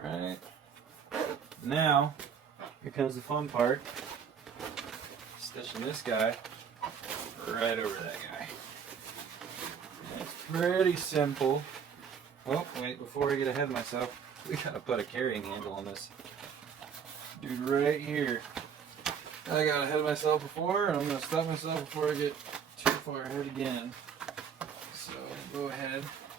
Alright. Now, here comes the fun part. Stitching this guy right over that guy. And it's pretty simple. Oh, wait, before I get ahead of myself, we gotta put a carrying handle on this dude right here. I got ahead of myself before, and I'm gonna stop myself before I get too far ahead again. So, go ahead,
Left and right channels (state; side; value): quieter; left; 7.2 dB